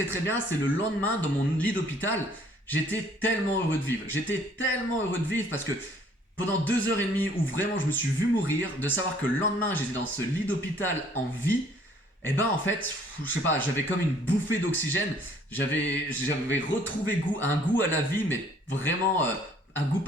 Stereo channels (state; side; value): normal; both; correlation 0.59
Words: très bien, c'est le lendemain, dans mon lit d'hôpital, j'étais tellement heureux de vivre. J'étais tellement heureux de vivre parce que pendant 2h30 où vraiment je me suis vu mourir, de savoir que le lendemain j'étais dans ce lit d'hôpital en vie, en fait, je sais pas, j'avais comme une bouffée d'oxygène, j'avais retrouvé un goût à la vie, mais vraiment un goût